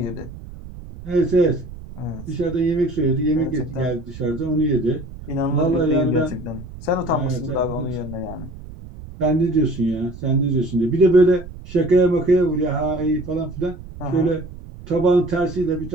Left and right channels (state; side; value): noise; right; rumble, 14 dB below the sound